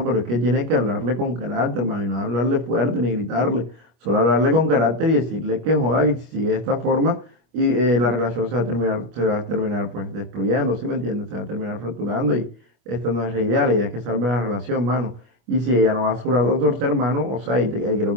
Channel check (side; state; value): left; late; 25 ms